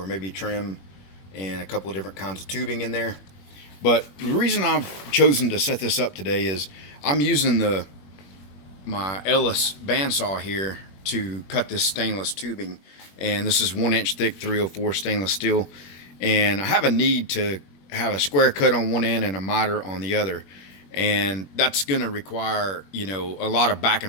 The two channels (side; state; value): right; late; 21 ms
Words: maybe trim, and a couple of different kinds of tubing in there. But the reason I've chosen to set this up today is I'm using my Ellis bandsaw here to cut this stainless tubing, and this is 1-inch thick 304 stainless steel, and I have a need to have a square cut on one end and a miter on the other, and that's going to require a lot of back